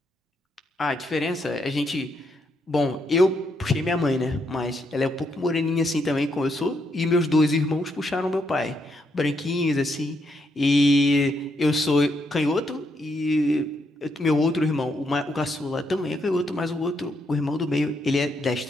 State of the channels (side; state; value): both; normal; correlation 0.77